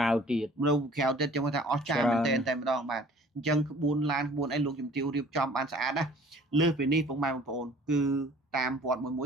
tiệt đâu khéo tên trong người ta cha mình tên tên đó bạn chân buôn lan buôn anh luôn dùng tiêu điệp trong ban xã đó lừa về đi phong mai một phồn cứ tam vọt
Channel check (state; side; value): normal; both; correlation 0.51